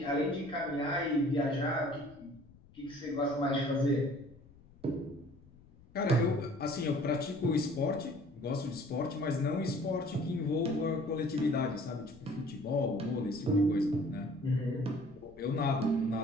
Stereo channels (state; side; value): noise; left; rumble, 24 dB below the sound